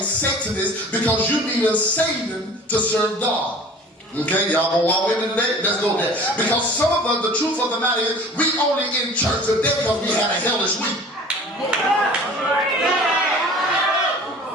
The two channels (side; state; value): both; normal; correlation 0.44